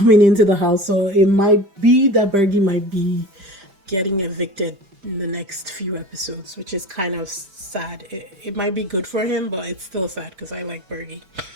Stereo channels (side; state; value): left; late; 5.3 ms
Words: into the house. So it might be that Bergie might be getting evicted in the next few episodes, which is kind of sad. It might be good for him, but it's still sad because I like Bergie.